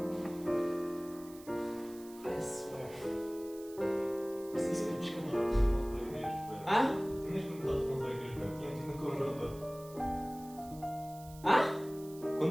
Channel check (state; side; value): noise; right; hiss, 20 dB below the sound